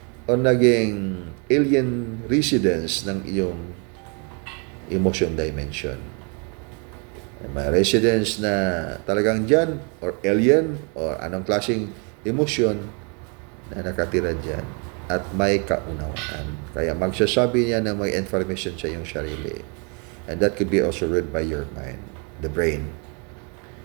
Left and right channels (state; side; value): quieter; left; 35.4 dB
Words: o naging alien residence ng iyong emotion dimension. May residence na talagang dyan, or alien, or anong klaseng emotion na nakatira dyan, at may kaunawaan. Kaya magsasabi niya na may information sa iyong sarili. And that could be also read by your mind, the brain.